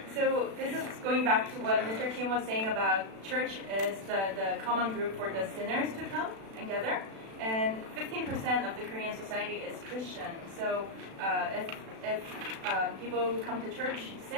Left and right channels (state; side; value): late; left; 36 ms